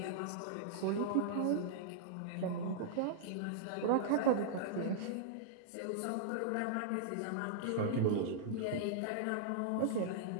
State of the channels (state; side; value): different; both; correlation -0.02